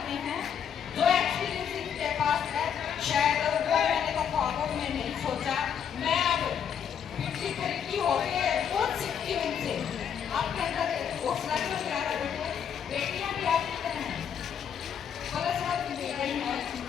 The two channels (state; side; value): quieter; right; 8.1 dB